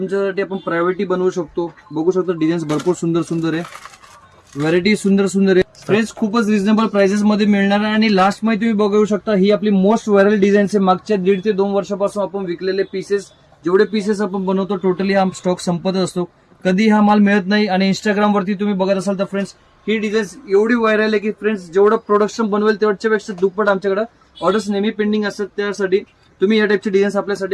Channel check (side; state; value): both; identical; correlation 1.00